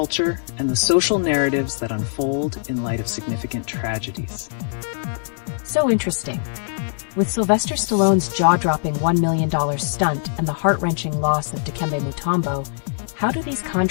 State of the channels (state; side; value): silent; right; digital silence